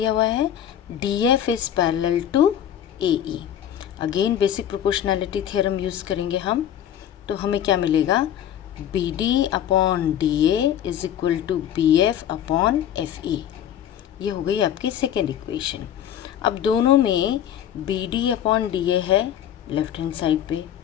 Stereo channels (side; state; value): right; quieter; 10.3 dB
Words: हुआ है, DF is parallel to AE. Again basic proportionality theorem use करेंगे हम, तो हमें क्या मिलेगा, BD upon DA is equal to BF upon FE. ये हो गई आपकी सेकेंड इक्वेशन. अब दोनों में BD अपॉन DA है लेफ्ट हैंड साइड पे,